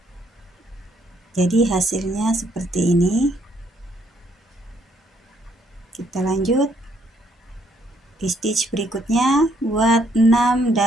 Jadi hasilnya seperti ini. Kita lanjut. Di stitch berikutnya buat 6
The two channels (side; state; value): both; normal; correlation 0.69